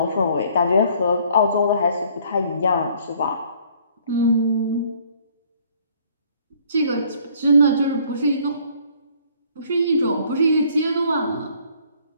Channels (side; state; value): both; inverted; correlation -0.60